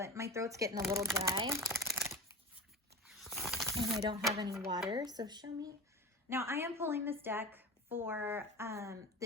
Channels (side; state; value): both; normal; correlation 0.30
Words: my throat's getting a little dry. And I don't have any water, so show me. Now, I am pulling this deck for,